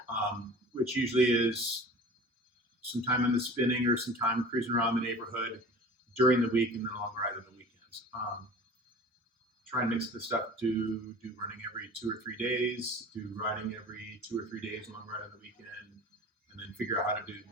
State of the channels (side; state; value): both; normal; correlation 0.40